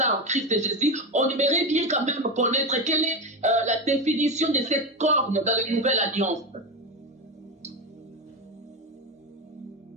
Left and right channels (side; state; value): both; normal; correlation 0.16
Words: en Christ et Jésus, on aimerait bien quand même connaître quelle est la définition de cette corne dans la nouvelle alliance.